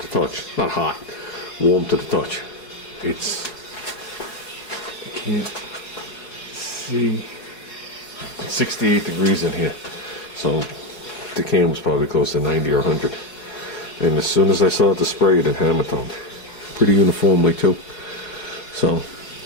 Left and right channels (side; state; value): right; late; 4.8 ms